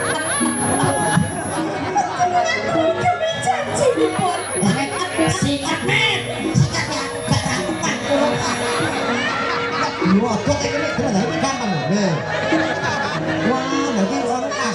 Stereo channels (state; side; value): identical; both; correlation 1.00